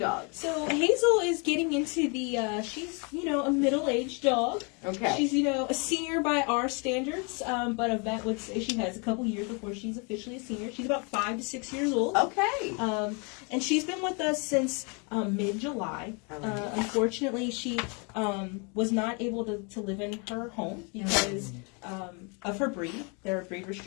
So Hazel is getting into the, she's, a middle-aged dog. Okay. She's, a senior by our standards, but a vet would say she has a couple years before she's officially a senior. She's about 5 to 6 years old. Okay. And she's been with us since mid-July. Unfortunately, she was not able to live in her home because of her breed. There are breed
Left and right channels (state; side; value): quieter; right; 34.0 dB